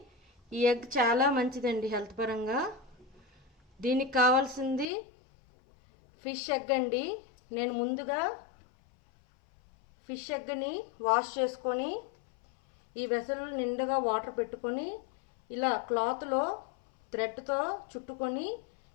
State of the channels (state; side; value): drops out; right; at 4.9 s